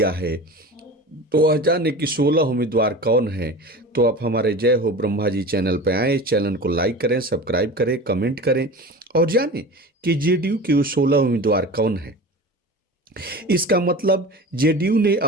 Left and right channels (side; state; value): both; normal; correlation 0.34